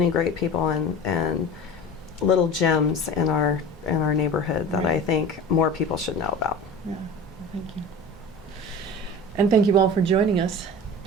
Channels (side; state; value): both; normal; correlation 0.35